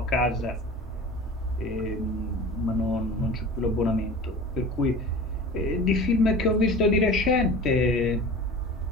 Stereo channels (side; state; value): both; normal; correlation 0.37